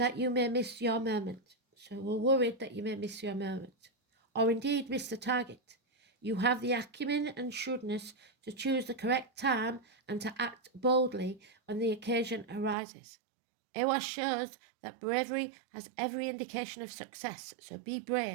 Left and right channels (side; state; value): left; drops out; at 12.8 s